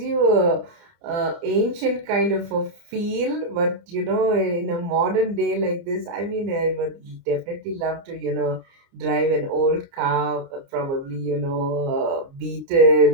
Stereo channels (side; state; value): left; late; 29 ms